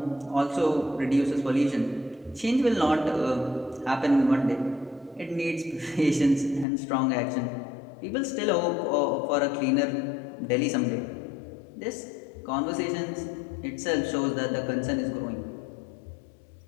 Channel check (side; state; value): right; drops out; at 6.7 s